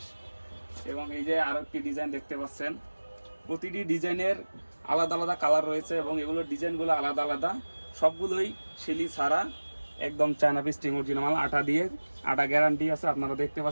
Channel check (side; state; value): both; inverted; correlation -1.00